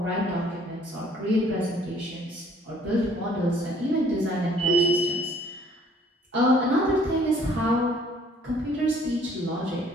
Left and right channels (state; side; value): normal; both; correlation 0.59